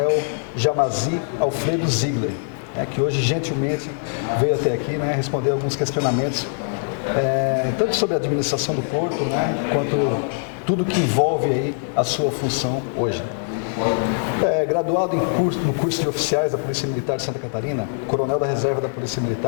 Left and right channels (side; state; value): right; silent; digital silence